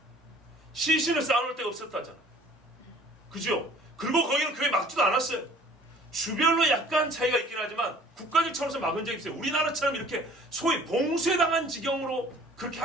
시신을 쌓아놓을 데가 없었다잖아. 그죠? 그리고 거기는 교회 막지도 않았어요. 주별로 약간 차이가 있긴 하지만 국가적 차원에서 막은 적이 있어요. 우리나라처럼 이렇게 소위 봉쇄당한 지경으로 그렇게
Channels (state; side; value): normal; both; correlation 0.52